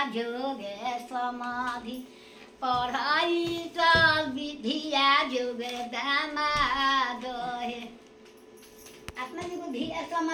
जोगे समाधि पढ़ाई चल विधिया जोगे दामाद अपना जो धिया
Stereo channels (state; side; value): identical; both; correlation 1.00